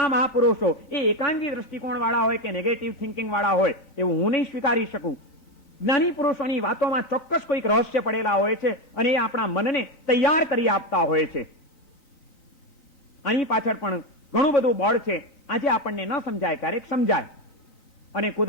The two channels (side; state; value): right; late; 3.9 ms